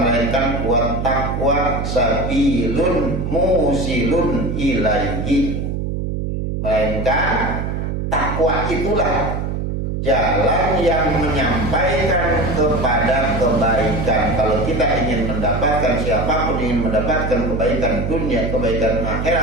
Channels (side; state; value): right; noise; hum, 2 dB below the sound